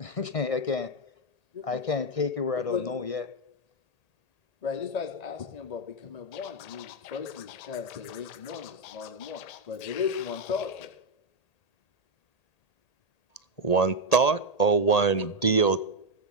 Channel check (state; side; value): late; right; 1.8 ms